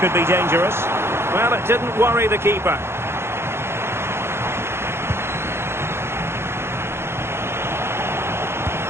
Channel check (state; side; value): late; left; 0.12 ms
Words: be dangerous. Well, it didn't worry the keeper.